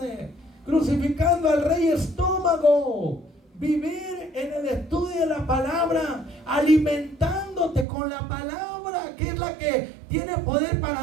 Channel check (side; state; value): left; drops out; at 7.9 s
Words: crucificando al rey estómago. Vivir en el estudio de la palabra, alimentándote con la palabra, que es la que tiene poder